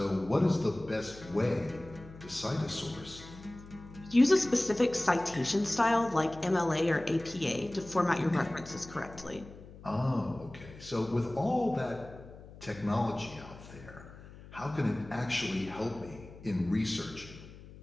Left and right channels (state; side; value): noise; left; hum, 18 dB below the sound